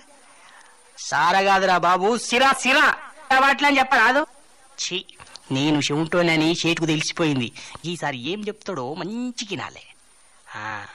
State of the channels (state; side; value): identical; both; correlation 1.00